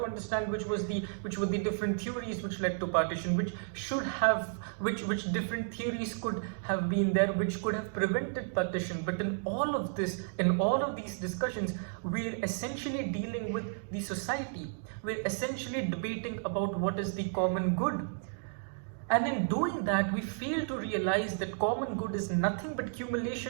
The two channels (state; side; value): silent; left; digital silence